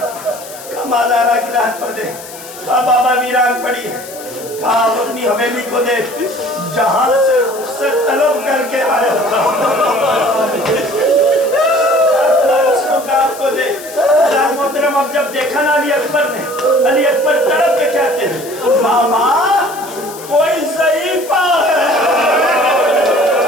माजारा की रात पर दे। कहा बाबा वीरान पड़ी है। कहा अपनी हवेली को देख, जहां से उससे तलब करके आया आपको दे। मोहतरम अब जब देखा ना अली अकबर ने, अली अकबर तड़प के कहते हैं बाबा कोई ज़ईफ़ा है।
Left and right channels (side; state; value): left; noise; hiss, 15 dB below the sound